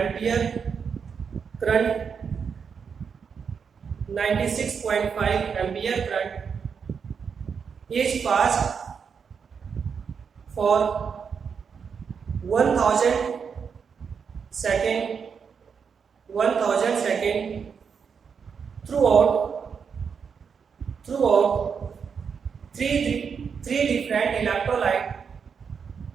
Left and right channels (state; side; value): quieter; left; 6.3 dB